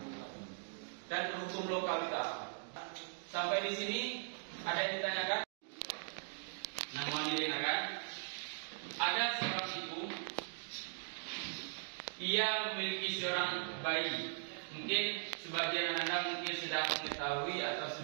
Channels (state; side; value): silent; left; digital silence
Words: dan hukum lokal kita. Sampai di sini ada yang ditanyakan? Namanya kan? Ada seorang ibu, ia memiliki seorang bayi. Mungkin sebagian anak mungkin sudah mengetahui atau